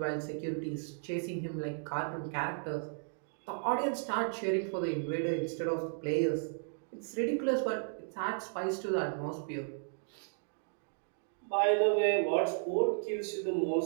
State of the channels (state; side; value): silent; left; digital silence